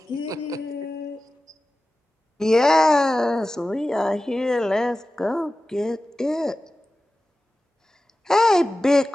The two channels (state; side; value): normal; both; correlation 0.95